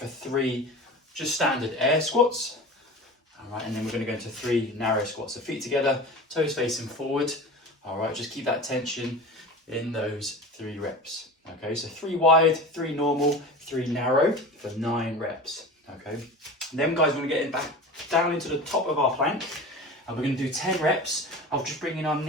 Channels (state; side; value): normal; both; correlation 0.33